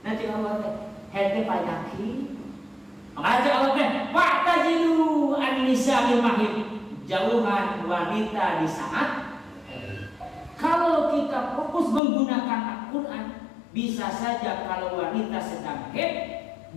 nanti awal head penyakit makanya awal pak tajidu an-nisa bil mahid, jauhan wanita di saat. Kalau kita fokus menggunakan Al-Quran, bisa saja kalau wanita sedang haid,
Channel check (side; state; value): right; drops out; at 12.0 s